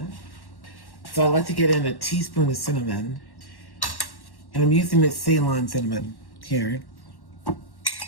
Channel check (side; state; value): right; late; 1.1 ms